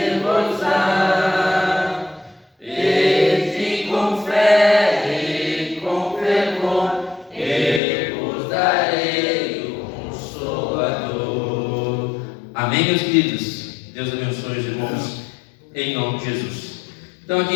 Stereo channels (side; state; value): right; drops out; at 7.8 s